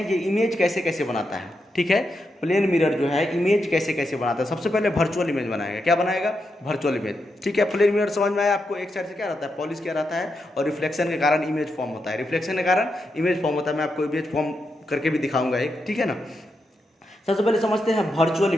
ये इमेज कैसे कैसे बनाता है, ठीक है। प्लेन मिरर जो है इमेज कैसे कैसे बनाता है, सबसे पहले वर्चुअल इमेज बनाएगा। क्या बनाएगा, वर्चुअल इमेज, ठीक है। प्लेन मिरर समझ में आया आपको, एक साइड से क्या रहता है, पॉलिश क्या रहता है, और रिफ्लेक्शन के कारण इमेज फॉर्म होता है, रिफ्लेक्शन के कारण इमेज फॉर्म होता है। मैं आपको इमेज फॉर्म करके भी दिखाऊंगा एक, ठीक है ना। सबसे पहले समझते हैं वर्चुअल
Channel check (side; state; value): both; normal; correlation 0.85